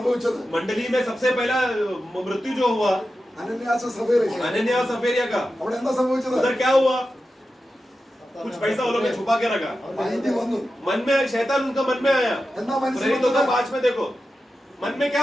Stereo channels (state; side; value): normal; both; correlation 0.92